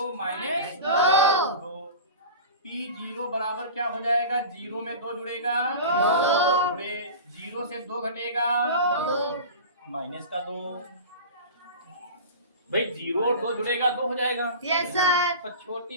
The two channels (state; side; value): inverted; both; correlation -0.33